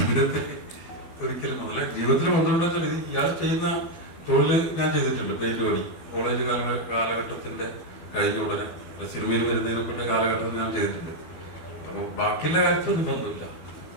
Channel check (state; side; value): late; right; 12 ms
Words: ജീവിതത്തിൽ ബന്ധമുണ്ടെന്ന് വെച്ചാൽ ഇയാൾ ചെയ്യുന്ന തൊഴിൽ ഞാൻ ചെയ്തിട്ടുണ്ട്. പെയിന്റ് പണി കോളേജ് കാലഘട്ടത്തിന്റെ കഴിഞ്ഞ ഉടനെ സിനിമയിൽ വരുന്നതിനൊക്കെ കാലഘട്ടത്തിൽ ഞാൻ ചെയ്തിട്ടുണ്ട്. അപ്പോൾ ബാക്കിയുള്ള കാര്യത്തിലൊന്നും ബന്ധമില്ല.